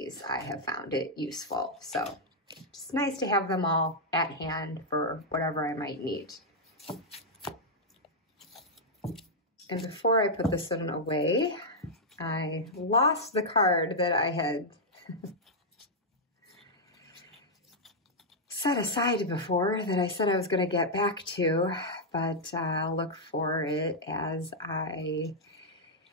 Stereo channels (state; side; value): normal; both; correlation -0.05